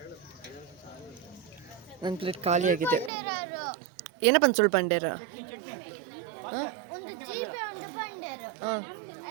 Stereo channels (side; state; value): left; drops out; at 3.1 s